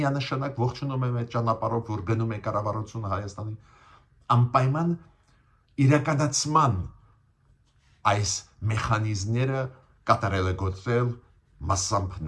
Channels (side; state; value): both; identical; correlation 1.00